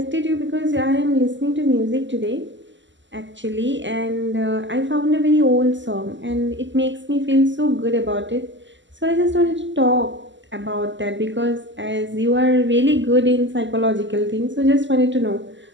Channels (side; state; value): left; late; 0.54 ms